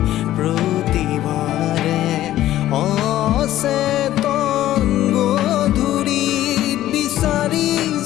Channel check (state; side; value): quieter; right; 13.7 dB